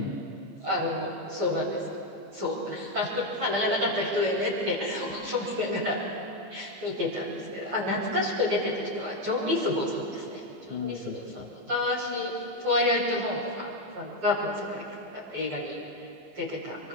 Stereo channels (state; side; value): late; left; 15 ms